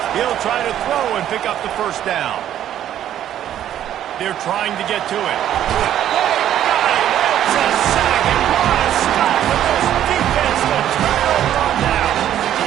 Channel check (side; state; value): left; quieter; 11.2 dB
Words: He'll try to throw and pick up the first down. They're trying to get to it. It's a sack, and what a stop with this defense to turn over on down.